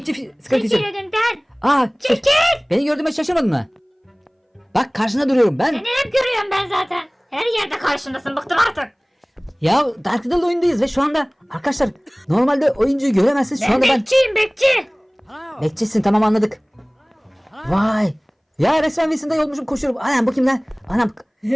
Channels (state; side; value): identical; both; correlation 1.00